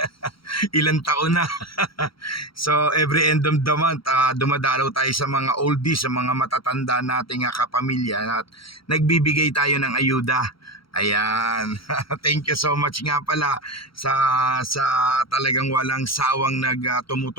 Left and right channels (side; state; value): right; late; 0.74 ms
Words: Ilang taon na. So every end of the month, dumadalaw tayo sa mga oldies, sa mga matatanda nating kapamilya at nagbibigay tayo ng ayuda. Ayan. Thank you so much nga pala sa talagang walang sawang